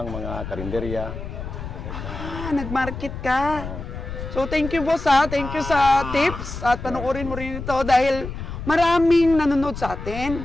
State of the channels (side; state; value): left; noise; rumble, 8 dB below the sound